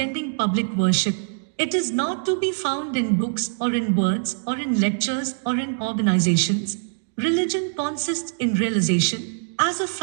public worship. It is not to be found in books or in words or in lectures or in organizations. Religion consists in realization. As a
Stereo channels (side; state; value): left; silent; digital silence